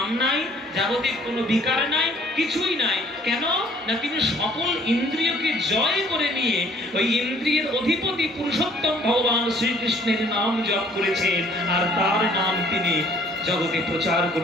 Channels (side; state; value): both; normal; correlation 0.58